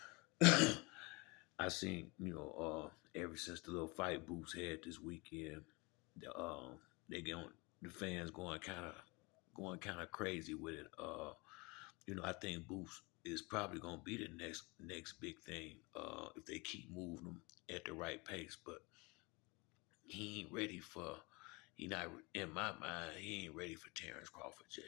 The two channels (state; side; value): quieter; right; 27.0 dB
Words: I seen, ever since the little fight Boots had this weekend, the they get on the fans going kind of crazy with it. I think Boots is probably gonna be the next big thing if they keep moving him at the right pace. But he ain't ready for. He not in my mind. He ain't ready for Terrence Crawford